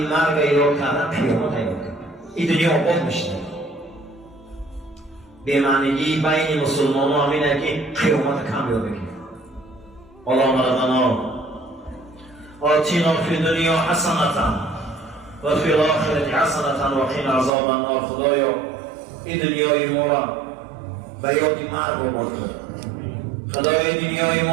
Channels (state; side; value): drops out; left; at 17.5 s